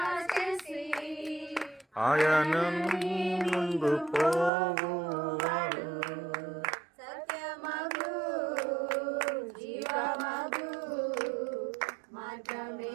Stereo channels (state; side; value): drops out; left; at 4.5 s